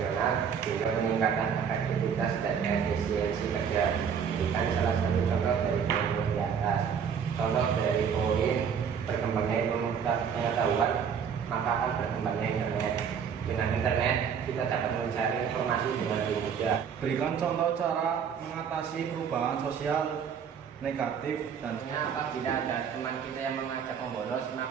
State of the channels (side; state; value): left; quieter; 7.3 dB